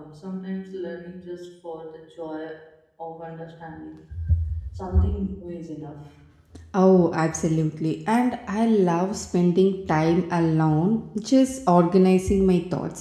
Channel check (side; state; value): both; identical; correlation 1.00